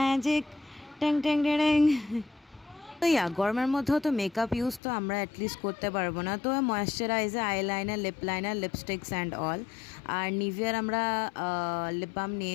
টেং টেং ডেং। তো ইয়া গরমের মধ্যেও তো makeup use তো আমরা অ্যাটলিস্ট করতে পারবো না, তো moisturiser, eyeliner, lip liner, lipsticks and all. আর নিভিয়ার আমরা লিপ বাম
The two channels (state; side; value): drops out; right; at 4.8 s